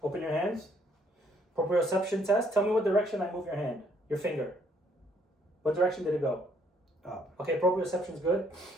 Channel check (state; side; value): normal; both; correlation 0.66